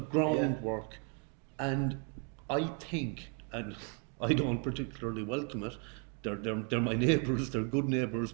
And I think, and I don't particularly welcome it, they're my neighbours, they're good neighbours,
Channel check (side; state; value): left; quieter; 34.4 dB